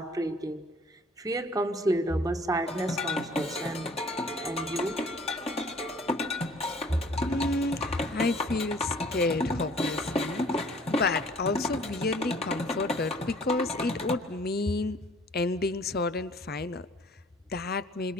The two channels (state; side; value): normal; both; correlation 0.55